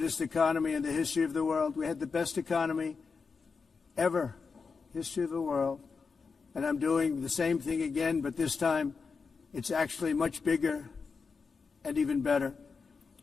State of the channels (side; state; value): right; quieter; 5.0 dB